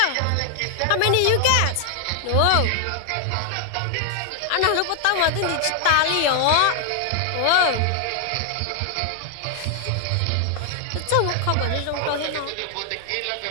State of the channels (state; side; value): different; both; correlation 0.00